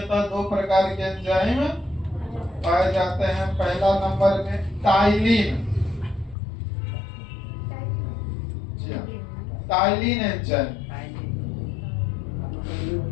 2 प्रकार के एंजाइम पाए जाते हैं। पहला नंबर में टाइलिन, टाइलिन एंजाइम।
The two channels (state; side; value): drops out; right; at 6.4 s